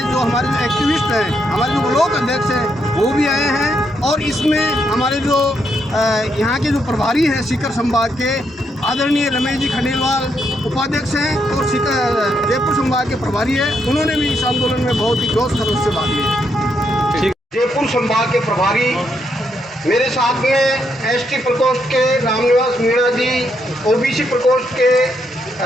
जो हमारे जो एक्टिविस्ट हैं, हमारे जो ब्लॉक अध्यक्ष हैं वो भी आए हैं। और इसमें हमारे जो यहाँ के जो प्रभारी हैं सीकर संभाग के आदरणीय रमेश जी खंडेलवाल उपाध्यक्ष हैं और जयपुर संभाग के प्रभारी हैं, उन्होंने भी इस आंदोलन में बहुत ही जोश खरोश से भाग लिया। जयपुर संभाग के प्रभारी मेरे साथ में एसटी प्रकोष्ठ के रामनिवास मीणा जी, ओबीसी प्रकोष्ठ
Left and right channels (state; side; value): normal; both; correlation 0.78